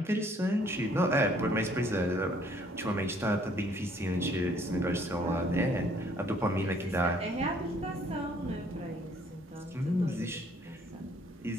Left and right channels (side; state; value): both; normal; correlation 0.62